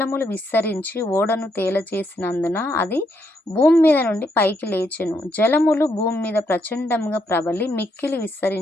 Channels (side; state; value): both; normal; correlation 0.76